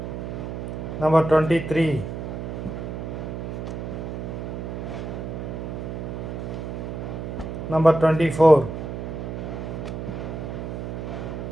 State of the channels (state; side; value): noise; right; hum, 5 dB below the sound